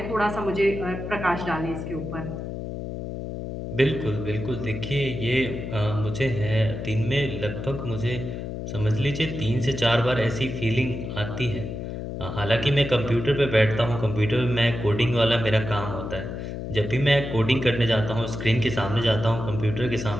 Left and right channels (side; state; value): left; noise; hum, 6 dB below the sound